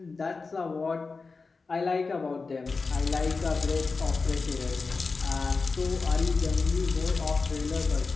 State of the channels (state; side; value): quieter; right; 4.3 dB